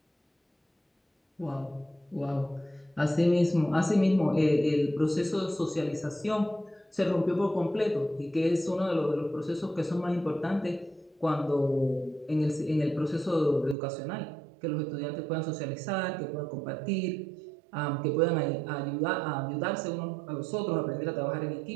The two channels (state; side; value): drops out; left; at 13.8 s